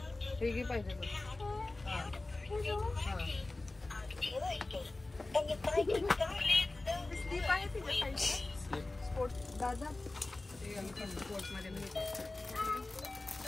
हे घे पाहिजे तर. स्लीप आहे तिथे स्पोर्ट दादा.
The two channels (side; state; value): right; quieter; 3.0 dB